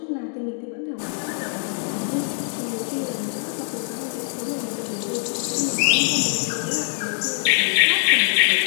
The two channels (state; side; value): silent; right; digital silence